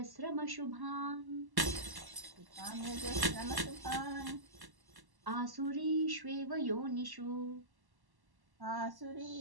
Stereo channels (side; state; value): left; late; 1.1 ms